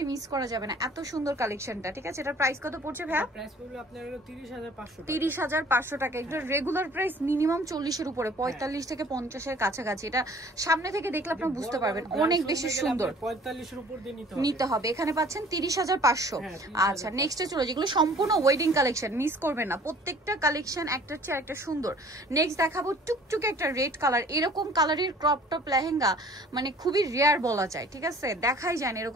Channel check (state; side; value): normal; both; correlation 0.52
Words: মিস করা যাবে না। এত সুন্দর কালেকশনটা, ঠিক আছে। এটার প্রাইস কত পড়ছে ভাইয়া? প্রাইস পড়বে আপনার 30500 টাকা। 30500 টাকা। এটা রেগুলার প্রাইস মিনিমাম 40 এর উপরে, 45 থেকে 50 এর কাছাকাছি। এটা সামনে থেকে দেখলে আপনারা বুঝতে পারবেন অনেক বেশি সুন্দর। 45 এর উপর দিয়ে নিতে হবে। এখানে পাচ্ছেন 30500। আচ্ছা, নেক্সটে চলো, যেগুলো সম্পূর্ণ ওয়েডিং কালেকশন, মিস করবেন না। প্রত্যেকটা কালেকশন একটার চেয়ে একটা সুন্দর। নেক্সট দেখাবো টুকটুকে একটা রেড কালার। এরকম কালারের ক্রপ টপ লেহেঙ্গা মানে খুবই রেয়ার বলা যায়, ঠিক আছে, দেখাই যায় না